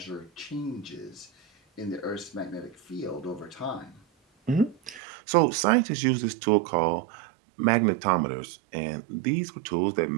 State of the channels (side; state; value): left; drops out; at 5.0 s